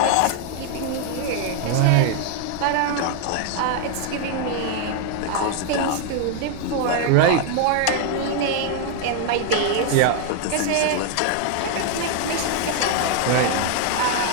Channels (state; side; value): different; both; correlation 0.00